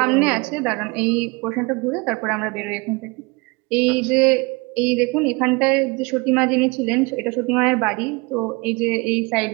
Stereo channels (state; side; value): quieter; left; 27.0 dB